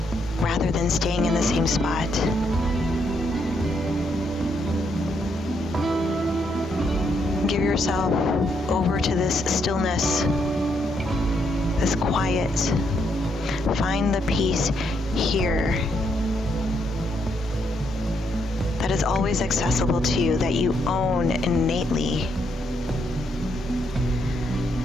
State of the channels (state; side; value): normal; both; correlation 0.76